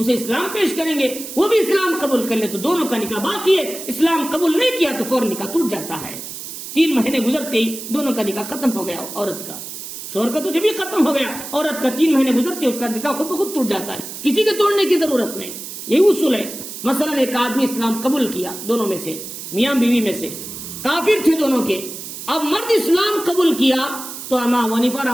اسلام پیش کریں گے، وہ بھی اسلام قبول کر لے تو دونوں کا نکاح باقی ہے، اسلام قبول نہیں کیا تو فوراً نکاح ٹوٹ جاتا ہے۔ 3 مہینے گزرتے ہی دونوں کا نکاح ختم ہو گیا، عورت کا، شوہر کا تو جب بھی ختم ہو گیا، عورت کا 3 مہینے گزرتے اس کا نکاح خود بخود ٹوٹ جاتا ہے، کسی کے توڑنے کی ضرورت نہیں۔ یہی اصول ہے۔ مثلا ایک آدمی اسلام قبول کیا، دونوں میں سے میاں بیوی میں سے کافر تھے دونوں کے، اب مرد اسلام قبول کیا تو امام حنیفہ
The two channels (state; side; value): noise; right; hiss, 10 dB below the sound